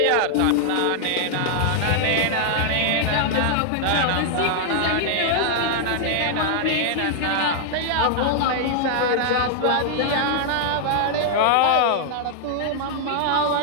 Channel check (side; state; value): both; different; correlation -0.01